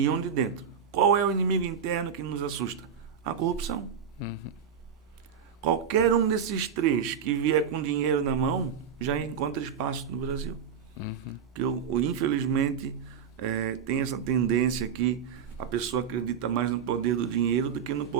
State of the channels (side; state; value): left; quieter; 7.3 dB